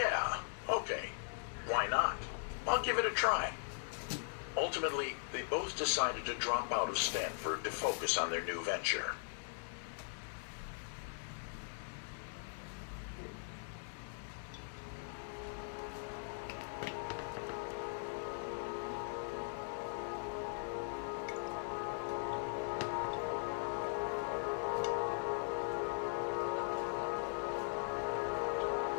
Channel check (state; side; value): silent; right; digital silence